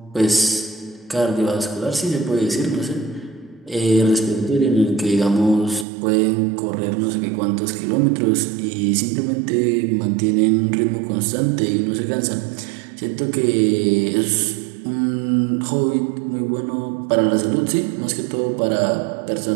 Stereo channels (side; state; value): left; drops out; at 5.9 s